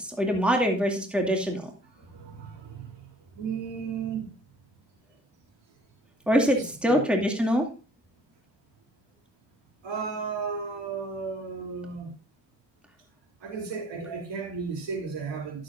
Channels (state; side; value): normal; both; correlation 0.56